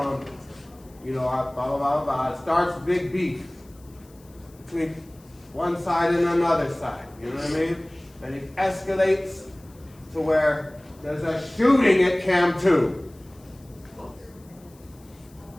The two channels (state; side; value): noise; left; hiss, 28 dB below the sound